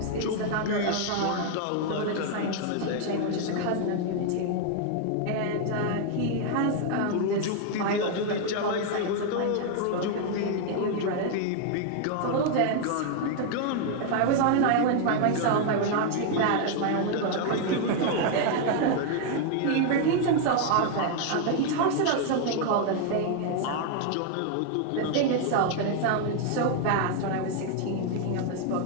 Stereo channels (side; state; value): both; different; correlation 0.00